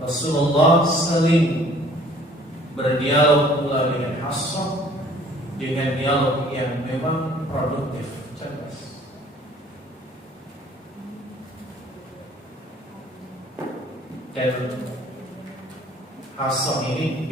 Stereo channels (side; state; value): both; normal; correlation 0.54